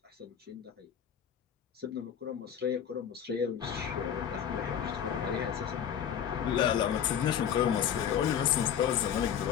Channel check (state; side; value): quieter; right; 8.8 dB